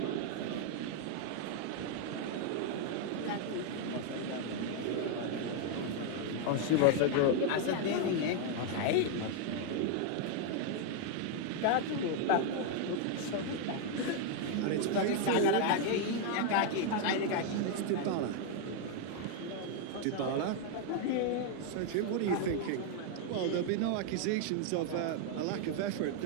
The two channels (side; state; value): both; different; correlation 0.00